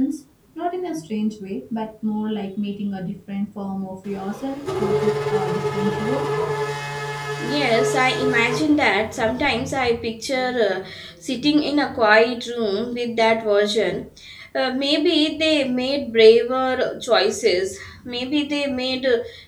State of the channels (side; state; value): both; identical; correlation 1.00